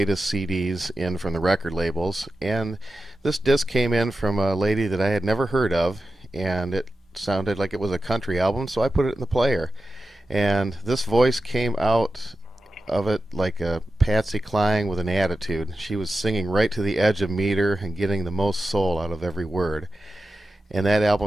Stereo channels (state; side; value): normal; both; correlation 0.92